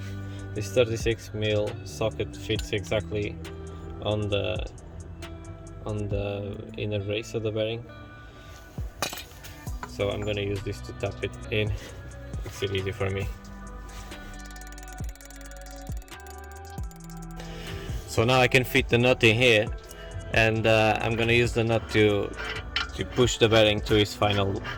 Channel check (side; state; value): both; identical; correlation 1.00